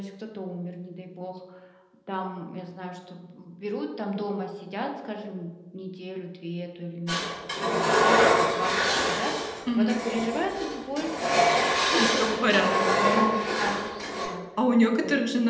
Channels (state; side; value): identical; both; correlation 1.00